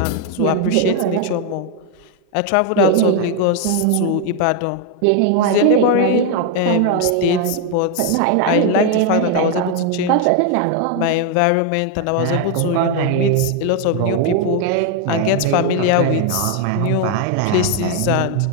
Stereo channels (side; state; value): both; different; correlation 0.01